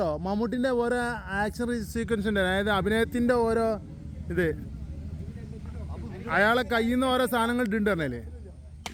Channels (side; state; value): both; identical; correlation 1.00